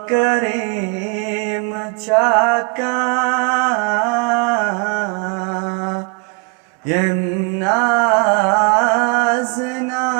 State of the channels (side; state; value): left; quieter; 33.4 dB